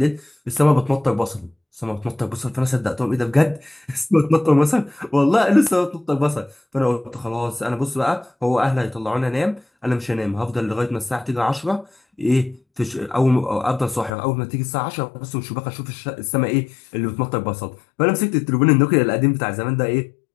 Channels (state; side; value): drops out; right; at 14.1 s